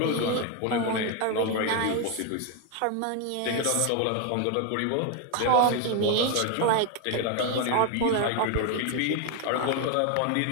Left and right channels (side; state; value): both; different; correlation 0.01